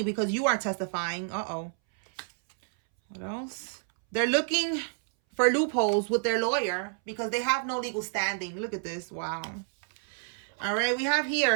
because you are testifying. Uh-oh. What else? They're looking for loopholes with their lawyer because they have no legal standing. Look at this. Wow. All right, we have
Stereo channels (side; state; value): left; silent; 59 dB below the other